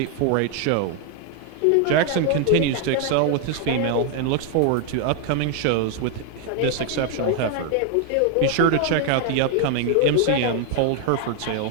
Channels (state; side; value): different; both; correlation 0.01